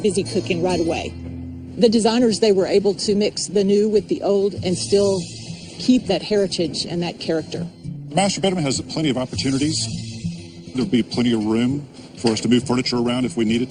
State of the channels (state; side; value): identical; both; correlation 1.00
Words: busy cooking right away. The designers, they were able to mix the new with the old and still keep that heritage and that character. The master bedroom has plenty of opportunities. There'll be plenty of room for us to move furniture around if we needed